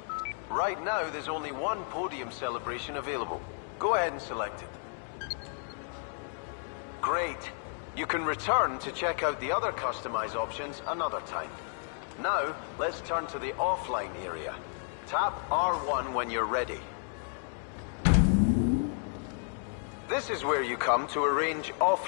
Right now, there's only one podium celebration available. Go ahead and select it. Great. You can return to check out the other customize options another time. Now, let's turn to the offline area. Tap R1 when you're ready. This is where you come to arrange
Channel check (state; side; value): silent; right; 56 dB below the other